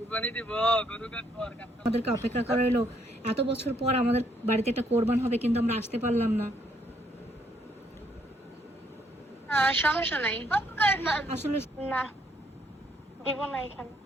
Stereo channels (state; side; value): normal; both; correlation 0.70